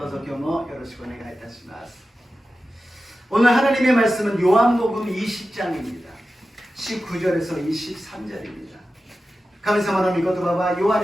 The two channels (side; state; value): both; normal; correlation 0.93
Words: うぞ今日もよろしくお願いいたします。오늘 하나님의 말씀은 요한복음 20장입니다. 19절에서 23절입니다. 神様の御言葉はヨハ